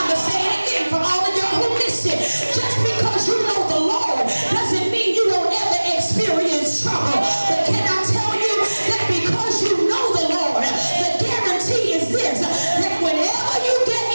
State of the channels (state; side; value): inverted; both; correlation -1.00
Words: going to say it again for all of y'all who missed it. Just because you know the Lord doesn't mean you won't ever experience trouble. But can I tell you that because you know the Lord, the guarantee is this, that whenever you get